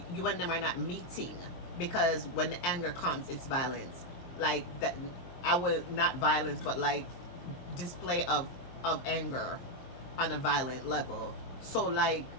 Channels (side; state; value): right; late; 23 ms